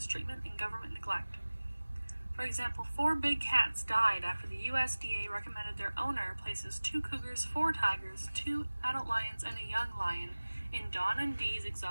treatment and government neglect. For example, 4 big cats died after the USDA recommended their owner places 2 cougars, 4 tigers, 2 adult lions, and a young lion in Don and Dee's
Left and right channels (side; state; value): both; inverted; correlation -1.00